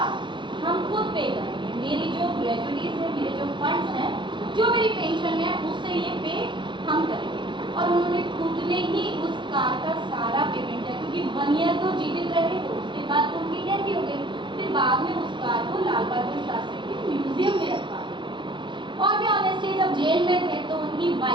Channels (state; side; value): late; left; 0.23 ms